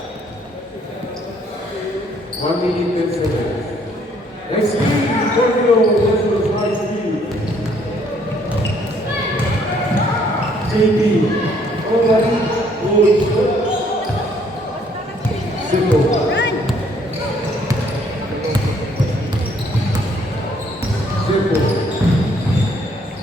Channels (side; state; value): both; normal; correlation 0.65